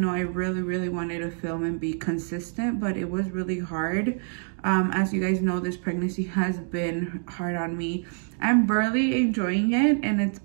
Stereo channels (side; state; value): left; silent; 56 dB below the other